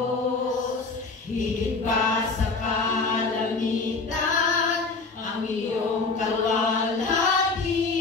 higit pa sa kalamitan, ang iyong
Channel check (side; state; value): right; quieter; 4.0 dB